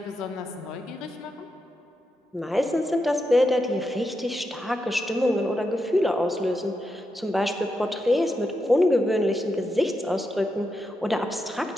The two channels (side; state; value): both; normal; correlation 0.86